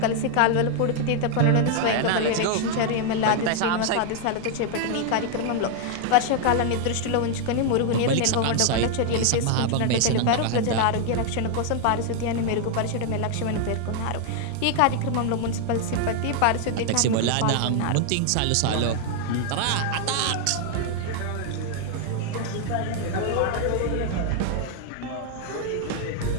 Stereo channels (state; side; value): different; both; correlation 0.00